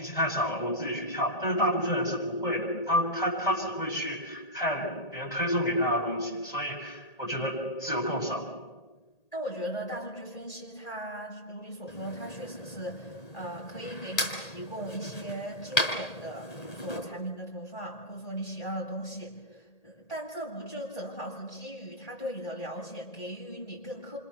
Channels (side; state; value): right; late; 1.8 ms